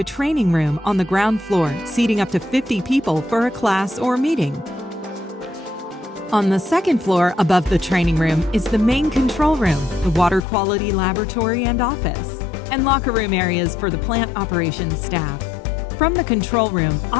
training room on the ground floor, seating up to 50 people for a class or meeting. On the second floor above the training room is the main control room, the water quality laboratory and office, and locker room areas for the plant operations staff. From the control room,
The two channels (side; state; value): right; drops out; at 10.4 s